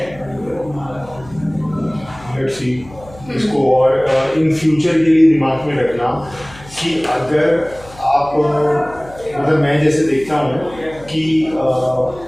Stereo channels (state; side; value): noise; left; hum, 21 dB below the sound